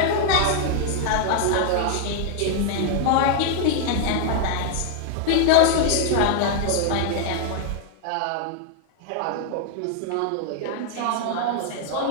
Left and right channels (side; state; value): both; different; correlation 0.00